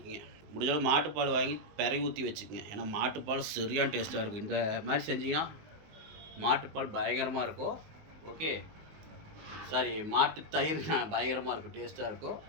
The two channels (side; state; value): left; late; 19 ms